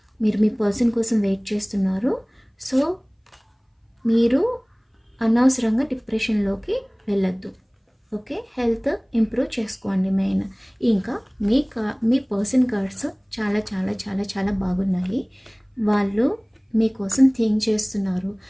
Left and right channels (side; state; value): both; identical; correlation 1.00